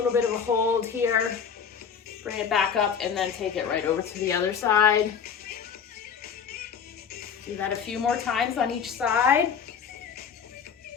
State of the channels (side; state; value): right; quieter; 7.1 dB